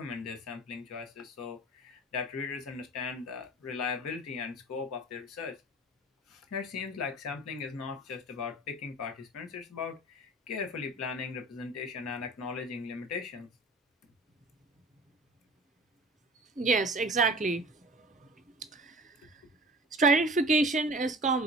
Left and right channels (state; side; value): normal; both; correlation 0.42